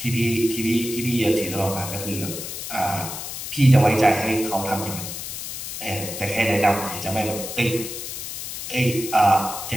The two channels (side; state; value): left; noise; hiss, 7 dB below the sound